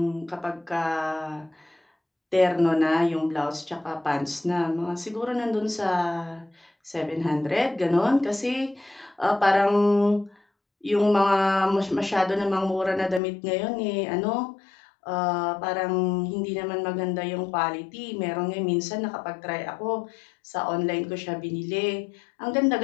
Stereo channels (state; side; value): drops out; right; at 13.2 s